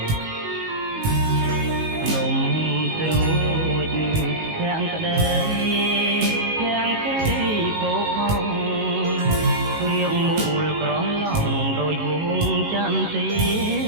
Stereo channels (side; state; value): left; late; 19 ms